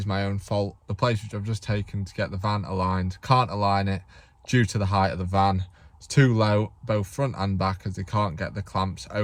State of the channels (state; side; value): identical; both; correlation 1.00